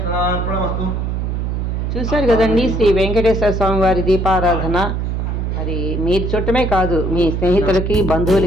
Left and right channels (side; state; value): right; noise; hum, 1 dB below the sound